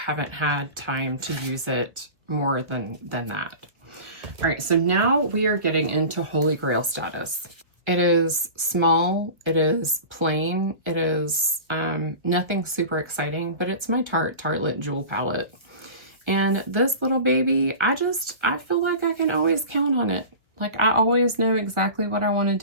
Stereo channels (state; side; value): late; left; 1.5 ms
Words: had time to use it more than that. All right, so now we are getting into Holy Grail status. It is small, it is plain, it is nothing super exciting, but it's my Tartelette Jewel palette. And this little baby, I feel like I can always count on it. Like I always know exactly what I want to